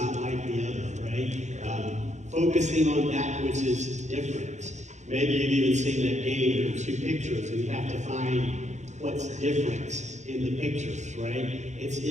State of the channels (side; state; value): left; late; 0.34 ms